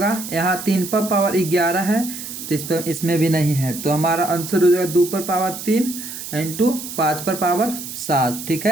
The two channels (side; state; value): right; noise; hiss, 9 dB below the sound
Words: यहाँ 3 पर पावर 11 है, तो इस पर इसमें भी नहीं है, तो हमारा आंसर हो जाएगा 2 पर पावर 3 इंटू 5 पर पावर 7। ठीक